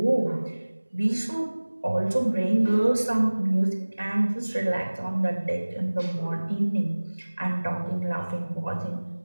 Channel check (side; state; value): both; inverted; correlation -1.00